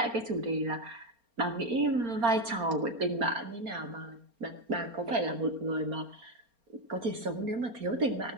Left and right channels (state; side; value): late; left; 4.3 ms